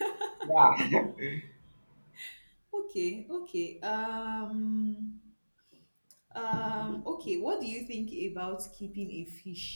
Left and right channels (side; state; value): both; inverted; correlation -1.00